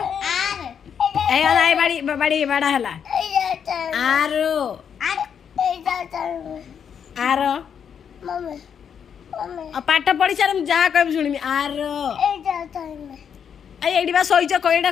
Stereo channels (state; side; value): quieter; right; 7.7 dB